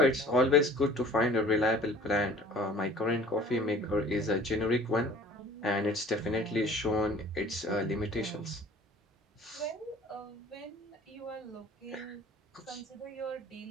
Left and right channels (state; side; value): normal; both; correlation 0.49